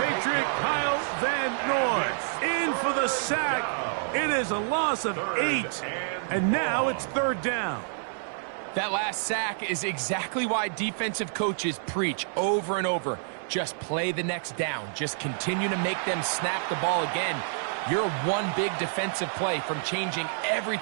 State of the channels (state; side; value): silent; left; 59 dB below the other